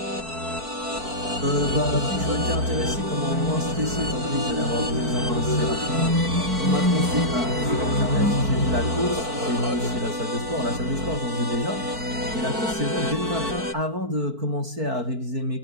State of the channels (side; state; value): left; late; 4.5 ms